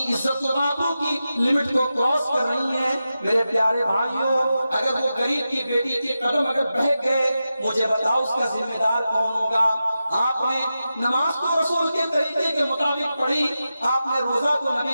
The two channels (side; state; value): both; inverted; correlation -0.91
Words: عزت و آبرو کی لمٹ کو کراس کر رہی ہیں۔ میرے پیارے بھائیوں، اگر وہ غریب کی بیٹی کے قدم اگر بہک گئے، مجھے بتاؤ اس کا ذمہ دار کون ہوگا؟ آپ نے نماز کو رسول کے طریقے کے مطابق پڑھی، آپ نے روزہ کو